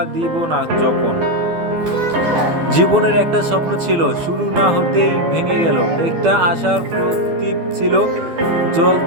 দিব না যখন। জীবনের একটা স্বপ্ন ছিল, শুরু না হতেই ভেঙে গেল। একটা আশার প্রদীপ ছিল,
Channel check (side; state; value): left; late; 12 ms